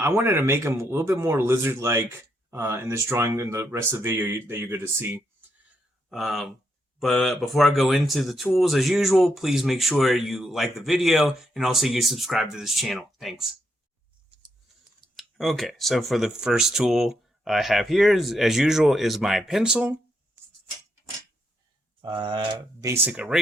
wanted to make him a little bit more lizard-like in this drawing and the rest of the video that you're going to see. But before I go into the tools, as usual, please make sure you like the video and also you subscribe to this channel. Thanks. Okay, so for the first tool I have here, as usual, is my pencil, basic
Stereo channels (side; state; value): both; normal; correlation 0.79